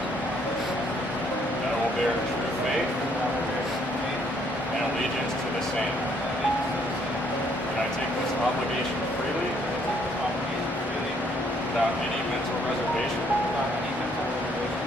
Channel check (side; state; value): both; normal; correlation 0.67